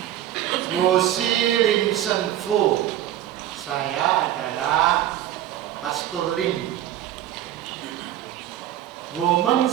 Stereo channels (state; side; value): quieter; left; 12.4 dB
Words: Wosi Lim Sen Fu. Saya adalah Pastor Lim. Women